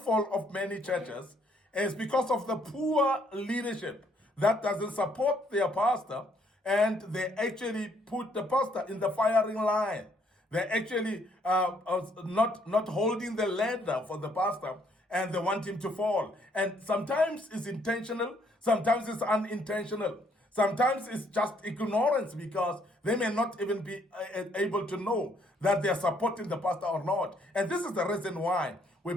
of many churches is because of the poor leadership that doesn't support their pastor, and they actually put the pastor in the firing line. They're actually not holding the ladder for the pastor, and they want him to fall. And sometimes it's intentional, sometimes it's unintentional. Sometimes it's just ignorance because they may not even be able to know that they are supporting the pastor or not. And this is the reason why we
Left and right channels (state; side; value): normal; both; correlation 0.68